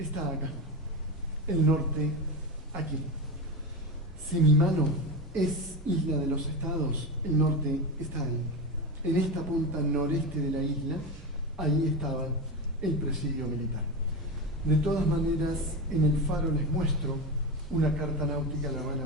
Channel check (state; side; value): normal; both; correlation 0.19